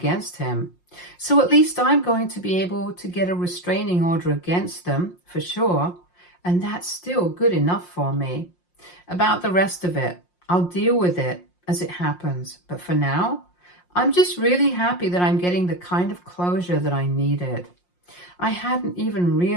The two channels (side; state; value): right; late; 5.6 ms